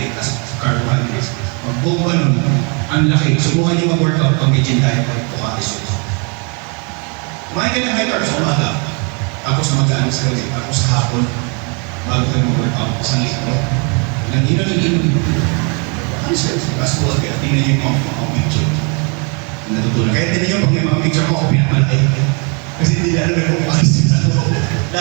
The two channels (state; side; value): quieter; left; 35.1 dB